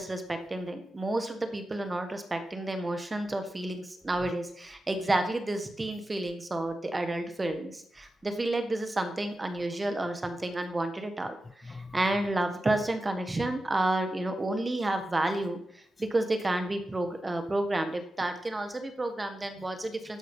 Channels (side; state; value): both; normal; correlation 0.92